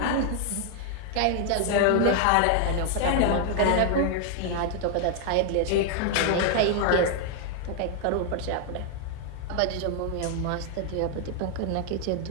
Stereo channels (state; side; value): different; both; correlation 0.00